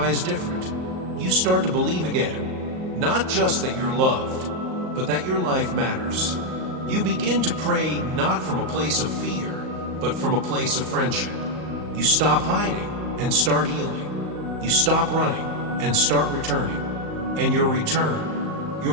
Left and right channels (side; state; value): left; late; 38 ms